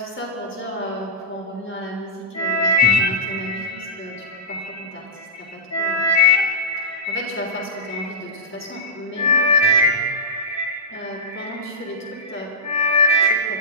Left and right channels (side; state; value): both; normal; correlation -0.16